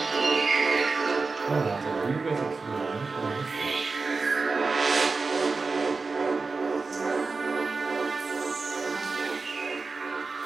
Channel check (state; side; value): quieter; left; 4.1 dB